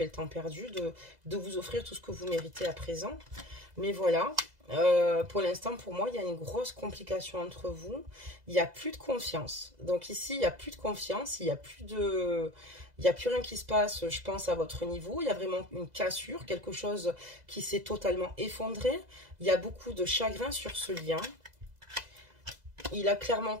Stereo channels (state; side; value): late; left; 2.0 ms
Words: le temps perdu, de vous offrir tout ce que vous méritez à présent. Mais voilà. Pour l'instant, pour moi, il y a une grosse complication entre vous. Il n'y a plus de confiance. Donc ici, il n'y a plus de confiance. Il n'y a plus rien qui se passe, je pense, à votre niveau. Il y a vraiment une cassure, quelque chose qui s'est totalement effondré. Il y a beaucoup de chagrin sur ce lien. Il a clairement